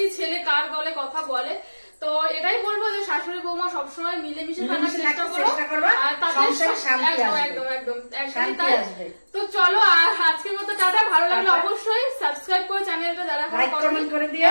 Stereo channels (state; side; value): inverted; both; correlation -1.00